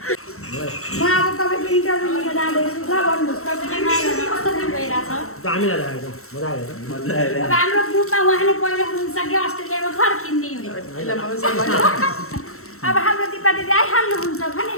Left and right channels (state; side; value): late; right; 0.63 ms